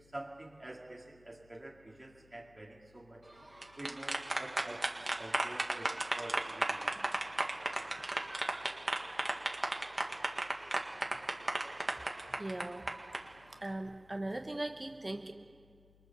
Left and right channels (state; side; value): noise; left; hum, 26 dB below the sound